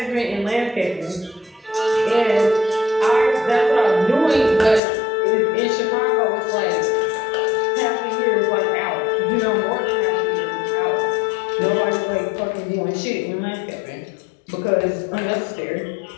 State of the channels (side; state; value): right; drops out; at 4.8 s